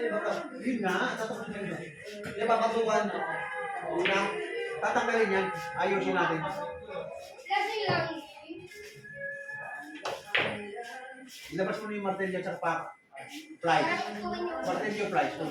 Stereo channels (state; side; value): identical; both; correlation 1.00